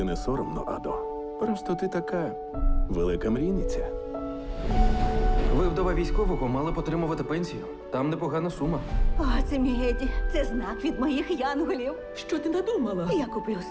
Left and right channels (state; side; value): identical; both; correlation 1.00